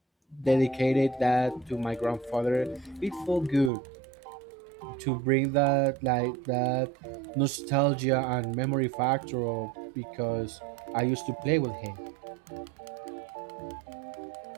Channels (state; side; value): drops out; left; at 3.7 s